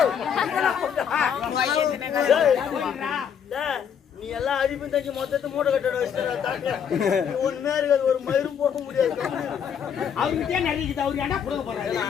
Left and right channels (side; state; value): right; quieter; 7.9 dB